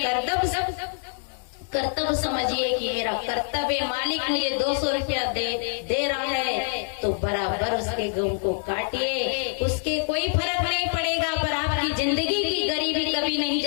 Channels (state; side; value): silent; right; 61 dB below the other